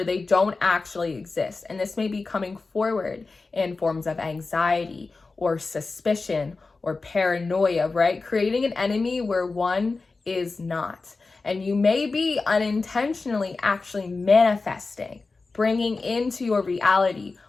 they don't actually exist. And this may be coming forward in forms of anxiety or suspicion or paranoia, right? Creating an enemy where one is not. And you may be unintentionally actually manifesting, bringing into your reality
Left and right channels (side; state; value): right; quieter; 3.9 dB